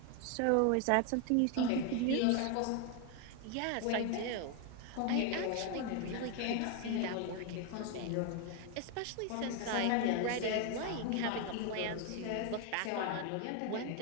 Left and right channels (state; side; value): different; both; correlation 0.01